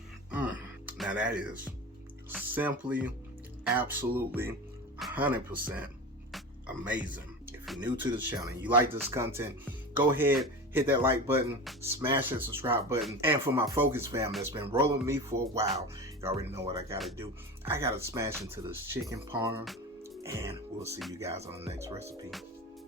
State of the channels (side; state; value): both; normal; correlation 0.29